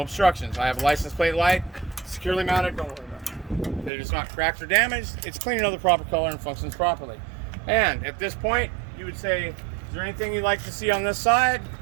obstructions. I have a license plate light, securely mounted. Don't worry about it. It is not cracked or damaged. It's clean and of the proper color and functions properly. And at this point, you would say, is there anything you'd like to see on this side?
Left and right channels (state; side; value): drops out; left; at 3.9 s